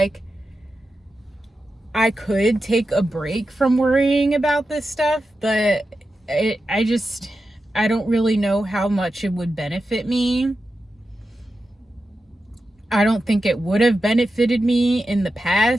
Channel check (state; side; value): normal; both; correlation 0.90